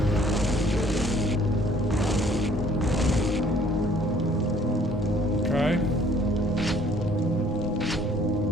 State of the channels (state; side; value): normal; both; correlation 0.59